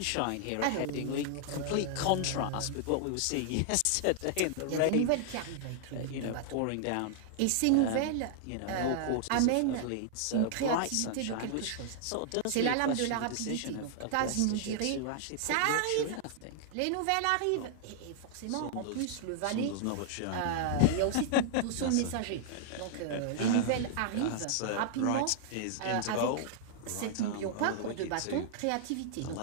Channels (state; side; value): different; both; correlation -0.01